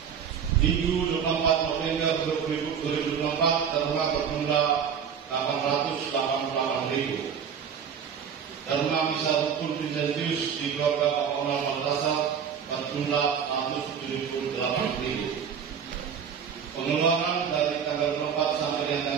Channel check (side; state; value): left; quieter; 7.5 dB